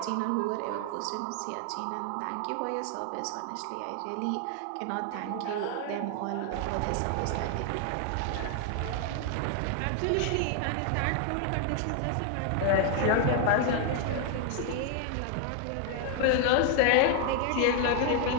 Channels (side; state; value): both; different; correlation 0.00